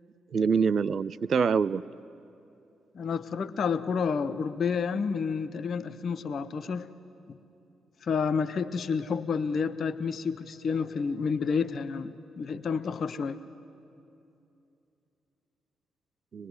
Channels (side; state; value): both; normal; correlation 0.77